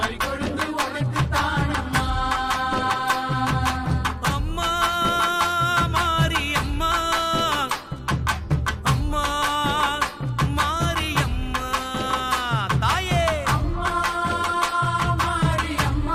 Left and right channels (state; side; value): identical; both; correlation 1.00